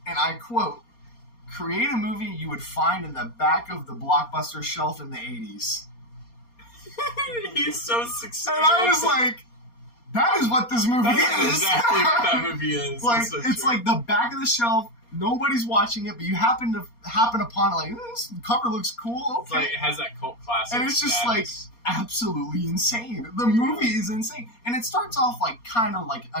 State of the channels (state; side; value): late; right; 4.3 ms